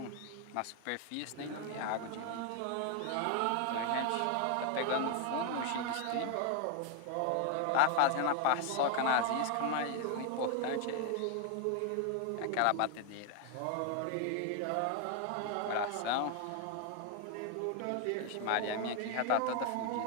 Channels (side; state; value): both; different; correlation 0.01